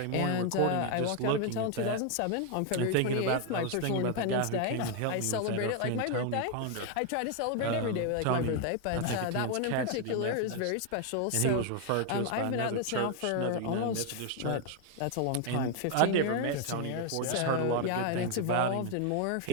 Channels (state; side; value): different; both; correlation 0.01